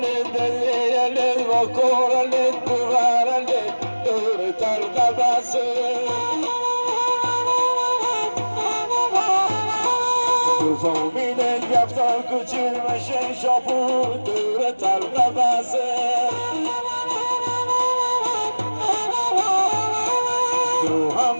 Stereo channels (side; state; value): both; inverted; correlation -1.00